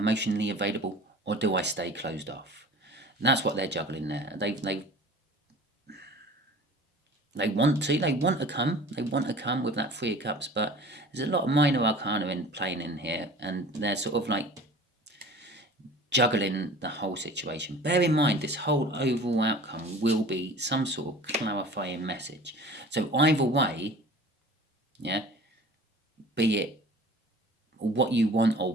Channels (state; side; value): normal; both; correlation 0.42